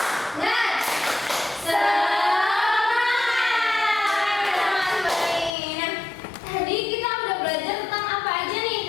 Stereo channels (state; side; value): drops out; right; at 5.5 s